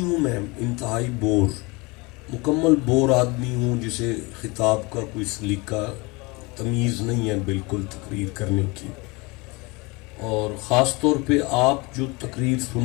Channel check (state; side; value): quieter; right; 26.1 dB